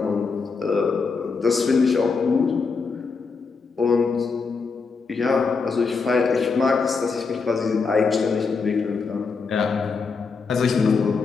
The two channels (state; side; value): quieter; right; 4.8 dB